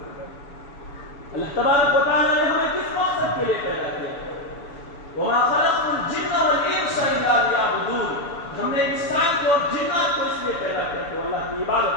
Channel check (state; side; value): late; right; 7.0 ms